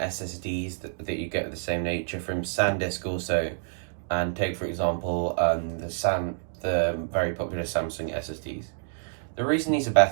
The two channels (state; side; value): silent; left; digital silence